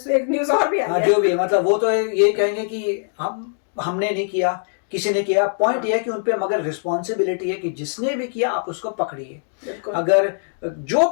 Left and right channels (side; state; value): right; silent; digital silence